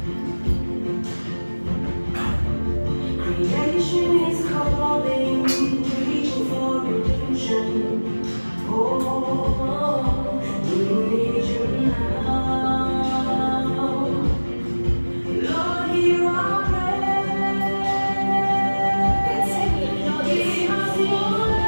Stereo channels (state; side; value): inverted; both; correlation -1.00